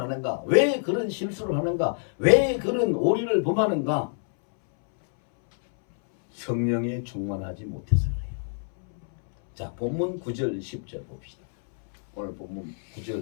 왜 그런 실수를 하는가? 왜 그런 오리를 범하는가? 성령에 충만하지 못해서 그래요. 자, 본문 9절 10절 봅시다. 오늘 본문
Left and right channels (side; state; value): right; silent; 61 dB below the other